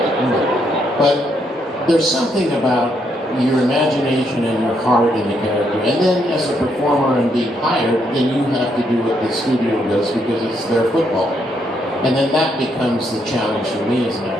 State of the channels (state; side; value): normal; both; correlation 0.75